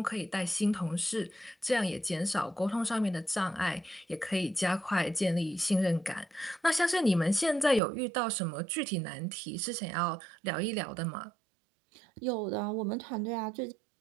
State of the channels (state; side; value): drops out; left; at 7.8 s